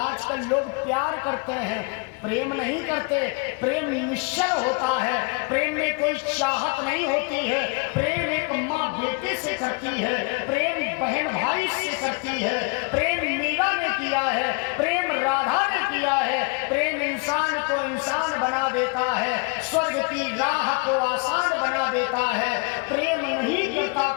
लोग प्यार करते हैं, प्रेम नहीं करते। प्रेम निश्चल होता है, प्रेम में कोई चाहत नहीं होती है। प्रेम एक माँ बेटे से करती है, प्रेम बहन भाई से करती है, प्रेम मीरा ने किया है, प्रेम राधा ने किया है। प्रेम इंसान को इंसान बना देता है, स्वर्ग की राह को आसान बना देता है। प्रेम नहीं करता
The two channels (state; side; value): quieter; right; 32.0 dB